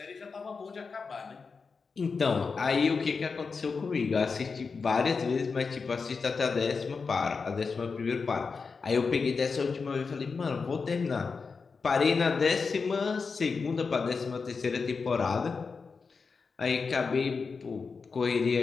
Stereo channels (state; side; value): quieter; right; 4.9 dB